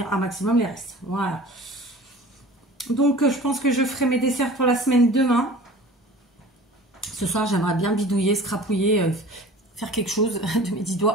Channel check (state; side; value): normal; both; correlation 0.42